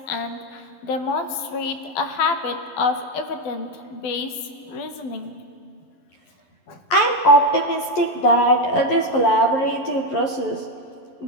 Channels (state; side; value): late; right; 11 ms